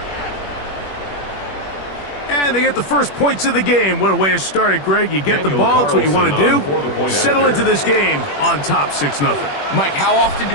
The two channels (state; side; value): late; right; 21 ms